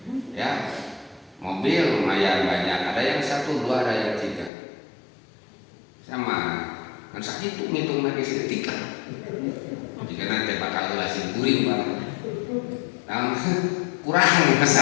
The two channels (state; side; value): drops out; right; at 4.5 s